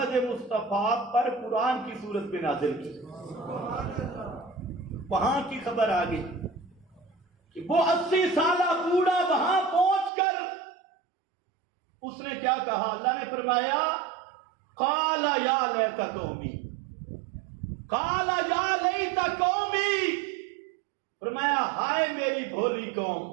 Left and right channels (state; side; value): drops out; left; at 10.1 s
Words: مصطفیٰ پر قرآن کی صورت میں نازل کی۔ وہاں کی خبر آ گئی کہ وہ 80 سالہ بوڑھا وہاں پہنچ کر اس نے کیا کہا؟ اللہ نے فرمایا قال یا لیت قومی، قال یا لیت قومی، فرمایا ہائے میری بھولی قوم،